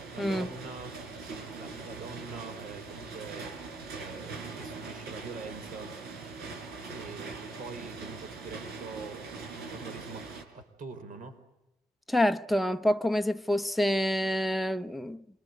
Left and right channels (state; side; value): normal; both; correlation 0.86